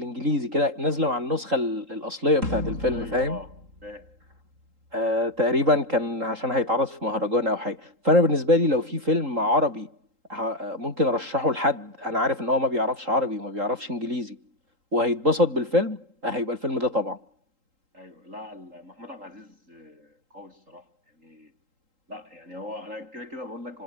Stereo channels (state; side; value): late; left; 3.8 ms